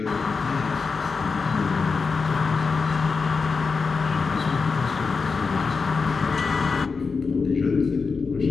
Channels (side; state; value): right; quieter; 4.8 dB